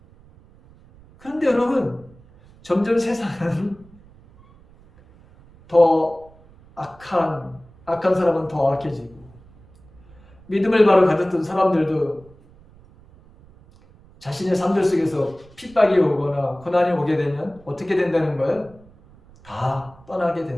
그런데 여러분 점점 세상은 더 악한 사람은 더 악해지고, 믿음을 바로 가졌던 사람들도 자신의 삶들 속에서 핍박이 오거나 고난이 오게 되면 어떻게 된다는 거예요? 다 떠나게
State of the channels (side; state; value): right; noise; rumble, 26 dB below the sound